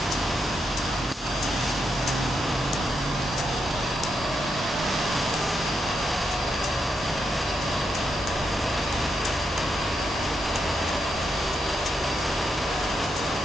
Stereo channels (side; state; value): both; normal; correlation 0.83